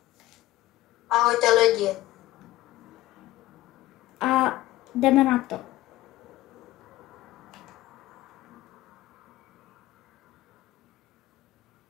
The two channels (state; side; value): quieter; right; 16.5 dB